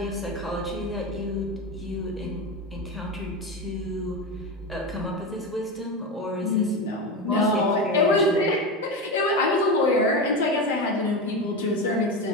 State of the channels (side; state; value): both; normal; correlation 0.19